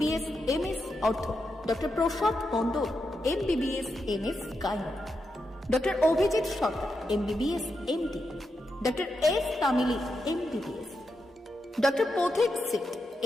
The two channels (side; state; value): both; normal; correlation 0.86